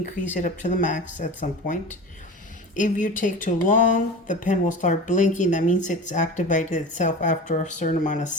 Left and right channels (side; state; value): both; normal; correlation 0.33